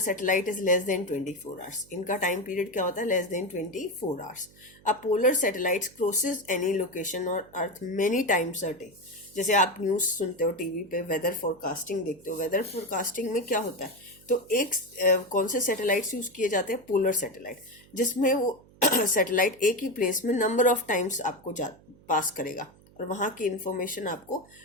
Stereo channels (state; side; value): noise; right; hum, 26 dB below the sound